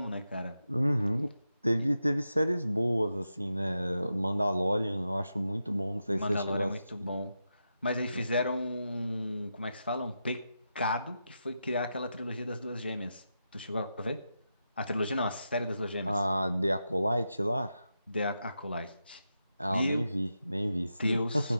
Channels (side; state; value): both; inverted; correlation -0.88